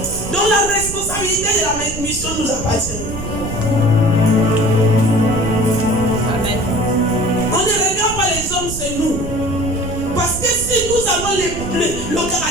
Donc la responsabilité de la mission nous appartient. Amen. On ne regarde pas les hommes, c'est nous. Parce que si nous avons le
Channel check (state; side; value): noise; right; rumble, 8 dB below the sound